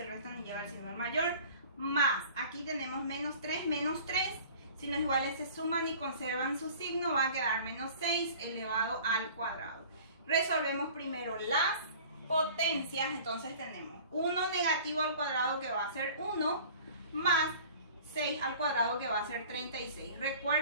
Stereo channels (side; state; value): both; inverted; correlation -0.45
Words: restan y lleva el signo del mayor, más, aquí tenemos menos 3, signos iguales se suman y conservan su signo, va a quedar menos 6 elevado al cuadrado. Resolvemos primero las potencias. Entonces tenemos 1 negativo al cuadrado, que va a ser 1, más 6 al cuadrado, que va a ser 36.